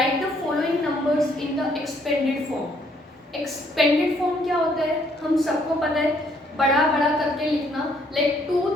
the following numbers in the expanded form. Expanded form क्या होता है? हम सबको पता है, बड़ा बड़ा करके लिखना. लाइक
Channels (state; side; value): normal; both; correlation 0.67